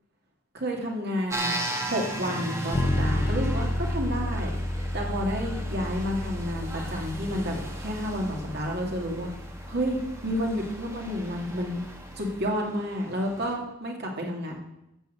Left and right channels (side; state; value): both; normal; correlation 0.61